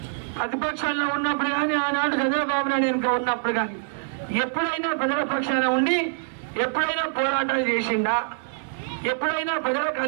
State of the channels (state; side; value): silent; left; 62 dB below the other